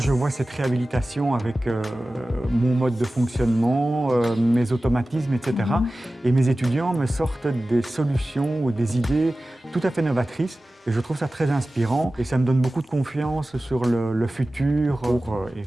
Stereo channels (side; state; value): both; normal; correlation 0.96